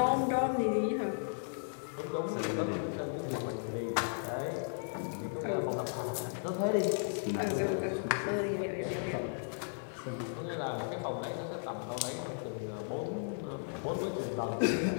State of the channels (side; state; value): right; silent; 54 dB below the other